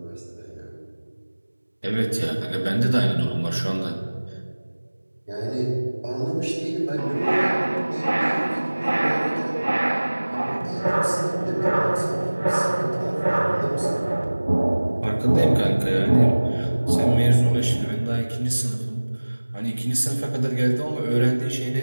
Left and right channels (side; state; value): both; inverted; correlation -1.00